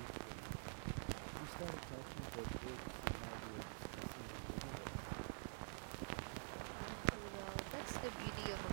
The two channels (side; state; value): left; silent; digital silence